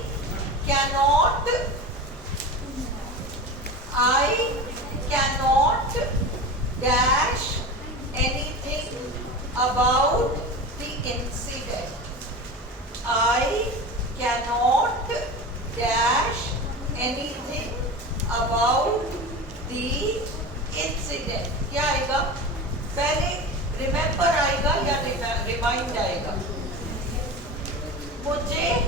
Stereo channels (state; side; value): normal; both; correlation 0.29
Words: cannot dash anything about the incident. I cannot dash anything about the incident. क्या आएगा? पहले रिमेम्बर आएगा या रिमाइंड आएगा? मुझे